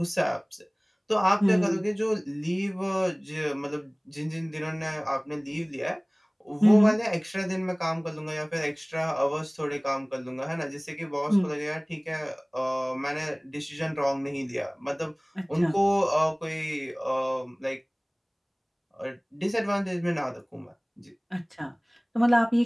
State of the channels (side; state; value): both; identical; correlation 1.00